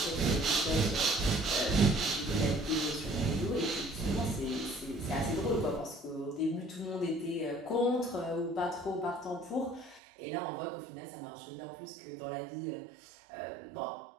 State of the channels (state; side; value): drops out; left; at 10.0 s